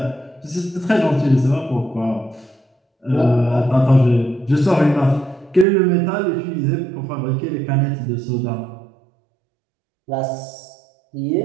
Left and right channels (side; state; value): left; drops out; at 5.7 s